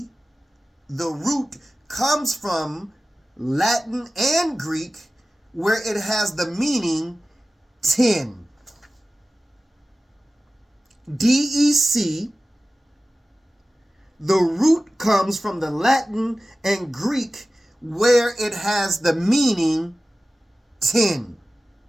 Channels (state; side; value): normal; both; correlation 0.96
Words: the root, comes from Latin and Greek, where it has the meaning 10. DEC, the root comes from the Latin and Greek, where it has the meaning 10.